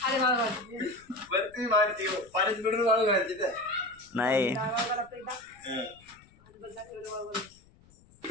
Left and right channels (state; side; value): noise; left; rumble, 27 dB below the sound